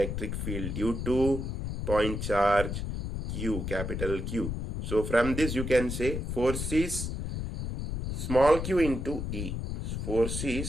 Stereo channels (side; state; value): left; noise; rumble, 4 dB below the sound